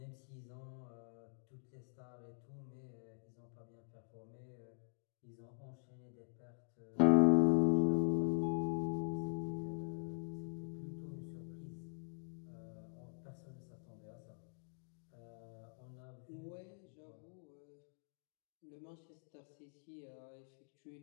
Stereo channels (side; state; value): right; silent; digital silence